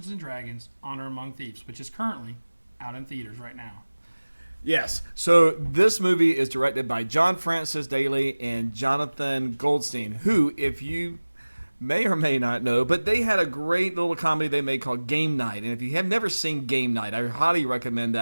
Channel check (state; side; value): inverted; both; correlation -1.00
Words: & Dragons Honor Among Thieves, which is currently out in theaters right now. Yes. So this movie is directed by John Francis Daley and Jonathan Goldstein, who, if you may or may not know, but they had a great little comedy they made called Game Night. And if you have never seen Game Night, I highly recommend